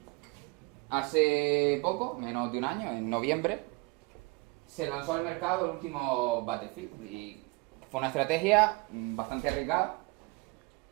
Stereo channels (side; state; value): left; quieter; 26.8 dB